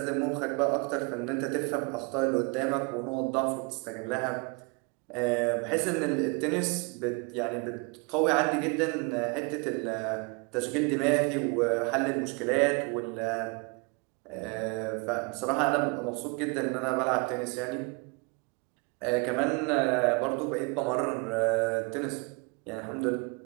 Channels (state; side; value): quieter; left; 31.7 dB